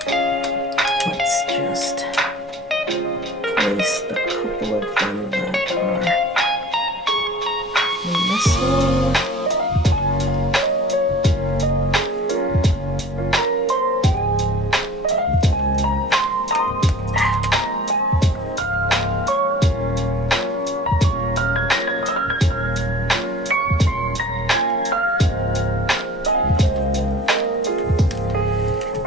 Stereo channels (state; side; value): normal; both; correlation 0.45